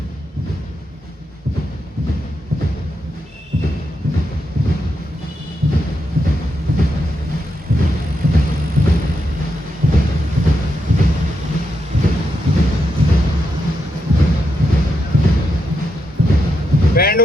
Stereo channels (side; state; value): both; normal; correlation 0.84